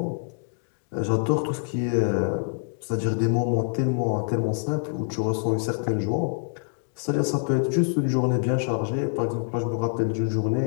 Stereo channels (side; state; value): right; silent; digital silence